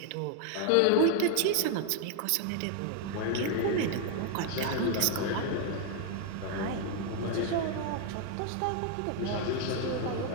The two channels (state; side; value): different; both; correlation 0.00